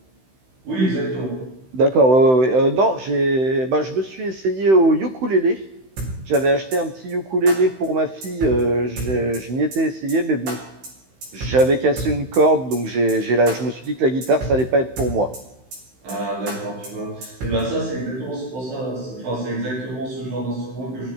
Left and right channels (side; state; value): left; late; 16 ms